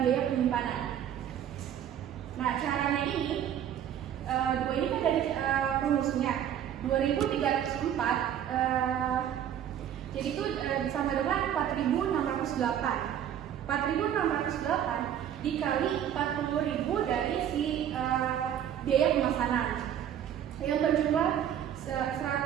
biaya penyimpanan. Nah, caranya ini, dua ini kan dari rumusnya 2.304, jadi itu sama dengan 4.608. 4.608 dikali 40.000 dari si biaya pemesanan yang berjumlah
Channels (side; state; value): left; quieter; 10.0 dB